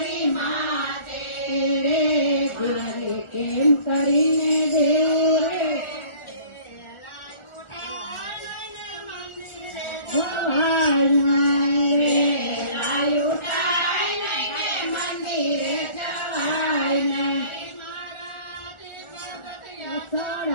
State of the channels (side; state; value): right; late; 1.4 ms